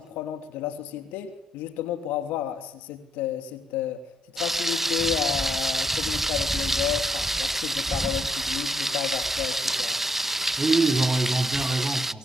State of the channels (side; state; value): both; normal; correlation 0.76